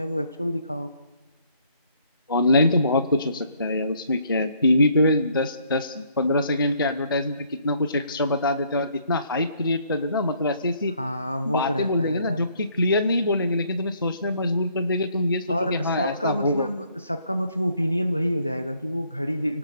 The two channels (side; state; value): both; inverted; correlation -0.66